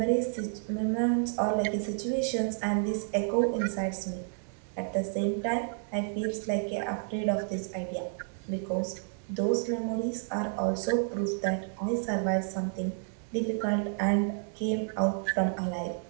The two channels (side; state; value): left; silent; 57 dB below the other